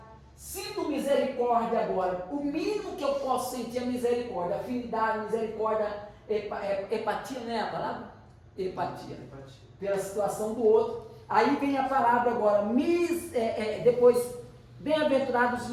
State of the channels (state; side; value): identical; both; correlation 1.00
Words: sinto misericórdia agora, o mínimo que eu posso sentir é misericórdia, afinidade, misericórdia, empatia, não é a palavra? Empatia, pela situação do outro. Aí vem a palavra agora, depois, bem-aventurados os